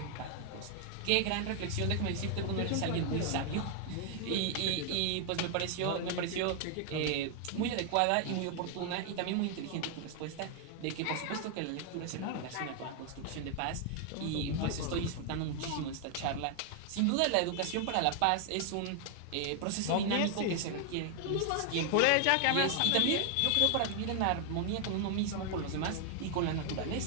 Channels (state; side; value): different; both; correlation 0.00